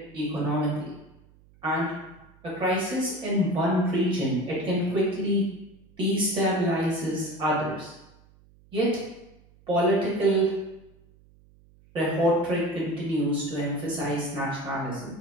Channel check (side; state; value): right; noise; hum, 28 dB below the sound